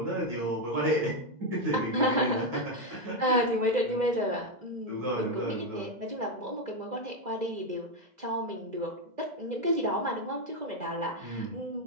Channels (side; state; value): left; late; 2.0 ms